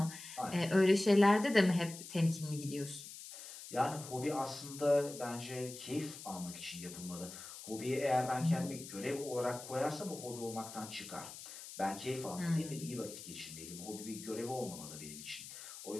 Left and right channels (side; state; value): left; noise; hiss, 12 dB below the sound